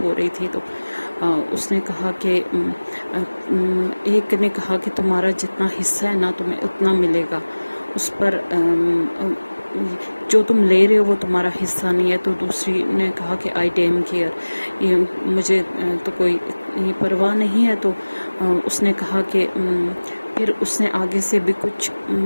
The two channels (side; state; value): both; inverted; correlation -1.00